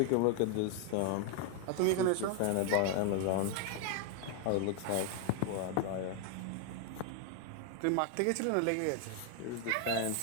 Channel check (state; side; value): different; both; correlation 0.00